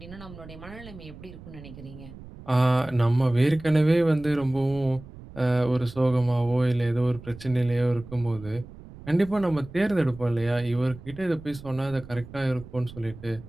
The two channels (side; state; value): right; noise; rumble, 17 dB below the sound